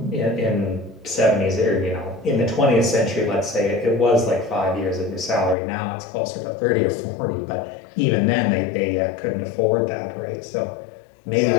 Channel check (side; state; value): right; drops out; at 5.6 s